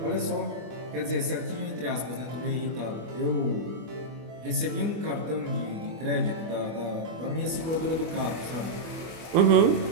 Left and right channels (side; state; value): left; late; 24 ms